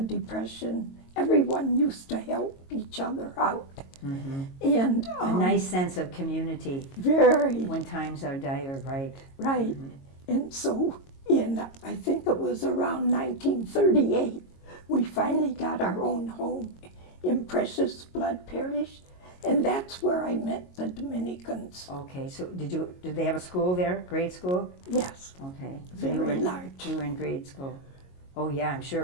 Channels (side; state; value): right; late; 22 ms